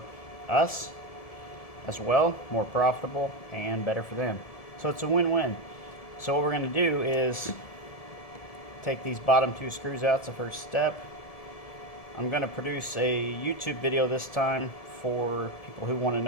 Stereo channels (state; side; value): late; right; 1.7 ms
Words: us as well. More profitable and better for them. So it's a win-win. So what we're going to do is take these bottom two screws out. It's the first step. I'm going to produce a YouTube video this time for people who want to